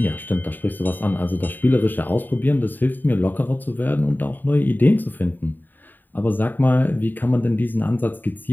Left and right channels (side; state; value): right; late; 0.090 ms